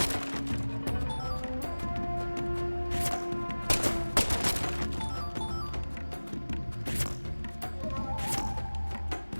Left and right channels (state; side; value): inverted; both; correlation -1.00